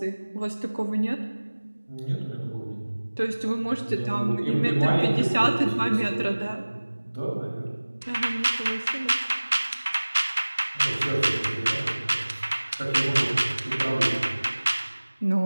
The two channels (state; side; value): inverted; both; correlation -1.00